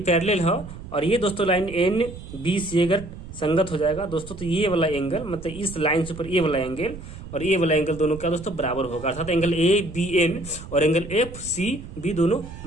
पैरेलल है और ये दोस्तों लाइन एन बी सी अगर संगत हो जाएगा दोस्तों तो ये वाला एंगल मतलब इस लाइन से ऊपर ये वाला एंगल और ये वाला एंगल दोनों क्या दोस्तों बराबर होगा। अर्थात एंगल ए बी एन और एंगल एफ सी बी दोनों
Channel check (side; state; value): right; noise; rumble, 13 dB below the sound